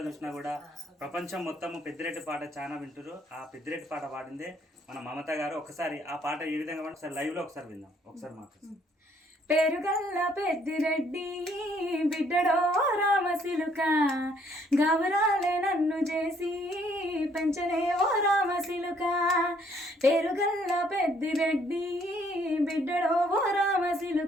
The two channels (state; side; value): normal; both; correlation 0.65